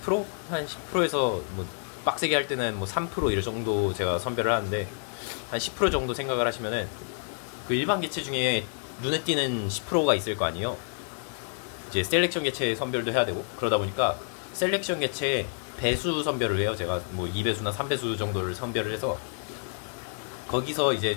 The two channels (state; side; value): silent; right; 57 dB below the other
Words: 한 10%에서 뭐 빡세게 할 때는 뭐 3% 이럴 정도 제가 선별을 하는데 한 10% 정도 생각을 하시면은 그 일반 개체 중에 눈에 띄는 10%가 있을 거 아니에요. 이제 셀렉션 개체 선별도 해야 되고 그러다 보니까 셀렉션 개체 배수 선별을 해요. 제가 뭐 2배수나 3배수 정도를 선별을 해서 거기서